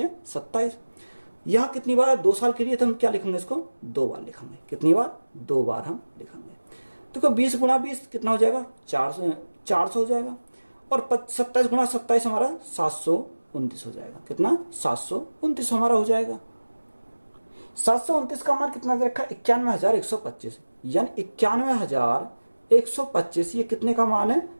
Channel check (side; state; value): both; inverted; correlation -1.00